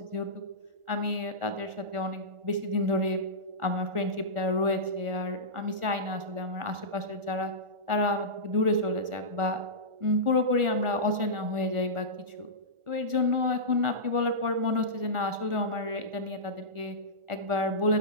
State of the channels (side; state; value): left; late; 1.4 ms